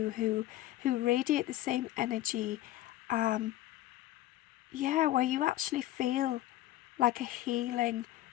who radiate the same energy, where you actually feel like a healing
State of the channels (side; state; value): right; quieter; 14.9 dB